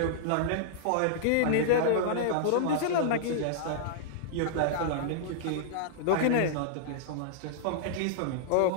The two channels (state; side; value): different; both; correlation -0.01